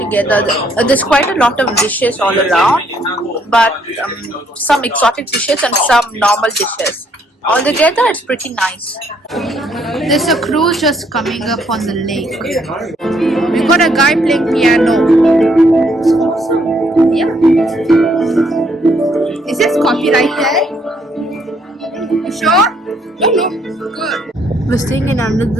There's quite a lot of dishes all around, but some exotic dishes and some normal dishes. Altogether, it's pretty nice. There's a cruise just coming up on the lake. We got a guy playing piano. Yeah. Is this copyrighted? You sure? Good. We're staying in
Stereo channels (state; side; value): normal; both; correlation 0.69